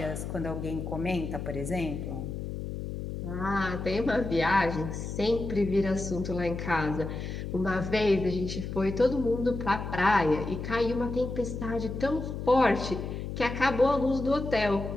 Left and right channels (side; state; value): left; noise; hum, 6 dB below the sound